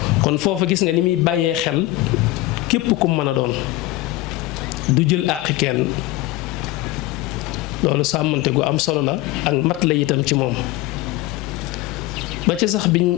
kon foofu gis nga ni muy bàyyee xel képp ku mën a doon du jël àqi kenn loolu sàmmante gu am solo la ak mat la itam ci moom ba ci sax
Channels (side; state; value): right; quieter; 17.5 dB